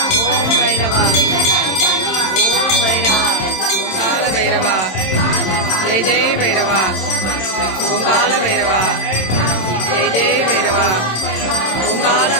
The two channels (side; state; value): right; late; 27 ms